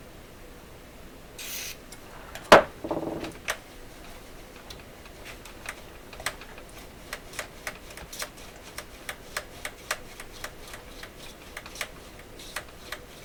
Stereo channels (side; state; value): both; identical; correlation 1.00